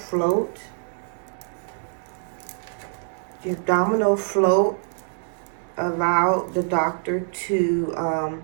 The abdominal float allowed the doctor to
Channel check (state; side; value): silent; left; digital silence